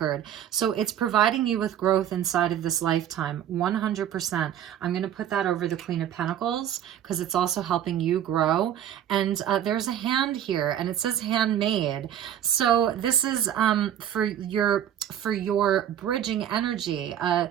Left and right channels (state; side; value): quieter; left; 10.4 dB